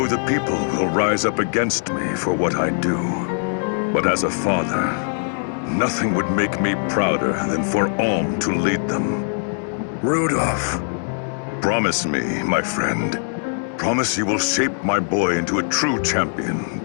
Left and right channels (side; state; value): right; silent; 65 dB below the other